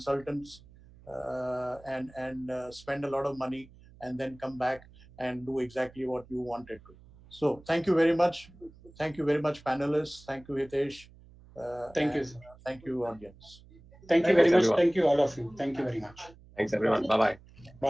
and spend a lot of money and then come back and do exactly what you wanted to. So thank you very much. Thank you very much, panelists. Thank you, Hitesh. Thank you, sir. Thank you, audience. Thank you very much. Thank you, all of you. Thank you very much. Thanks, everyone. Bye-bye.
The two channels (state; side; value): noise; right; hum, 23 dB below the sound